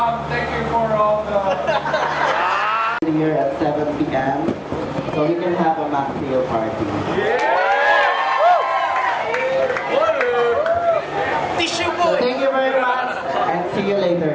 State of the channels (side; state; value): both; identical; correlation 1.00